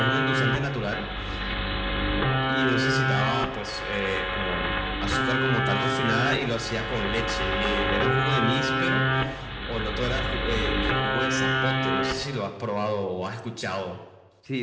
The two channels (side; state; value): both; identical; correlation 1.00